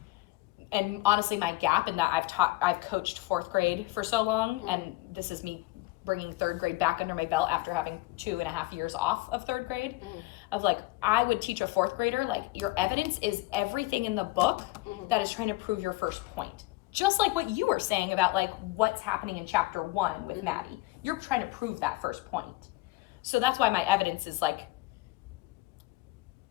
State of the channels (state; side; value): quieter; right; 20.1 dB